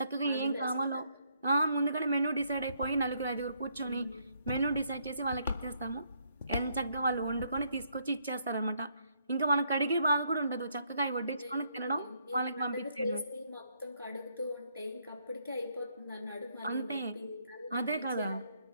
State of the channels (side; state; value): both; inverted; correlation -0.72